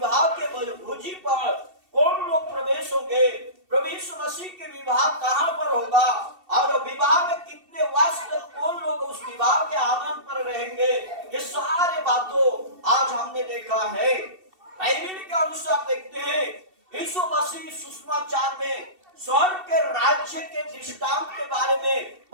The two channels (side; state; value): left; late; 2.7 ms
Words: के भोजी पर कौन लोग प्रवेश होंगे, प्रभु यीशु मसीह के विवाह कहाँ पर होगा, और विवाह में कितने वर्ष तक कौन लोग उस विवाह के आनंद पर रहेंगे, ये सारे बातों आज हमने देखा है। बाइबल के अनुसार देखते हैं, यीशु मसीह सुसमाचार में स्वर्ग के राज्य के दृष्टांत के बारे में